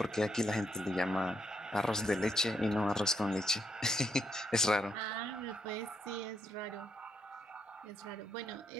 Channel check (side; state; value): both; normal; correlation 0.77